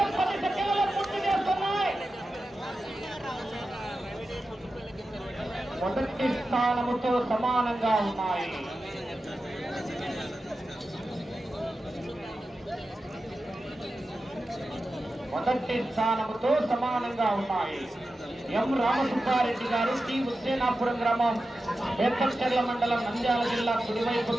10 సెకండ్లలో పూర్తి చేస్తున్నాయి. మొదటి స్థానముతో సమానంగా ఉన్నాయి. మొదటి స్థానముతో సమానంగా ఉన్నాయి. ఎం రామసుబ్బారెడ్డి గారు టి హుస్సేనాపురం గ్రామం బేతంచెర్ల మండలం నంద్యాల జిల్లా కుడివైపు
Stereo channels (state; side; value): normal; both; correlation 0.92